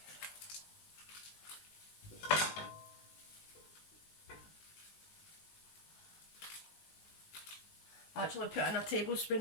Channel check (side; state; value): right; late; 19 ms